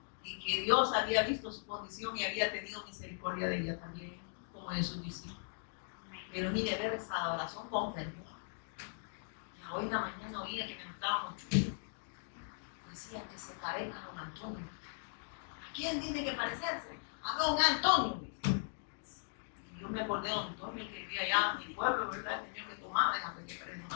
Y que Dios había visto su condición y había tenido misericordia de ella también, como de sus discípulos. Pero mire, ver esa adoración con fervor. Hoy en la mañana oía que me gustaba mucho. Decía que se parezca a don Antonio. ¿A quién tiene que parecerse? A don Antonio. Y yo me acordé de don Antonio, que vivía allá en mi pueblo, ¿verdad? El señor que tomaba, déjame que parezca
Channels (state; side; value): silent; right; digital silence